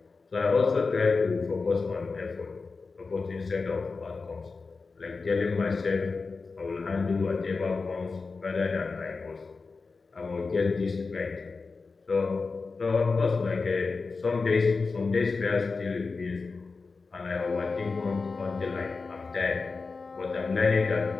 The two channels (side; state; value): right; quieter; 4.3 dB